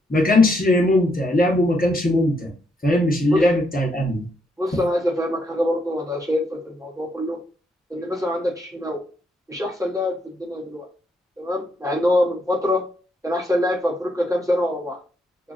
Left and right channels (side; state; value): both; normal; correlation 0.76